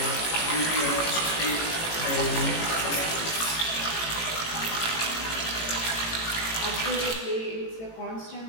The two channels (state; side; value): late; right; 18 ms